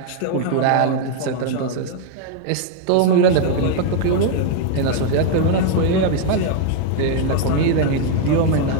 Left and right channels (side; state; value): both; different; correlation 0.00